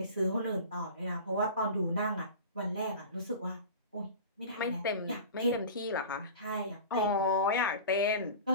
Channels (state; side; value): inverted; both; correlation -0.36